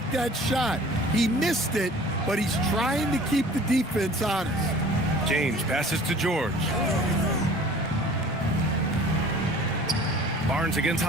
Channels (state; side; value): normal; both; correlation 0.48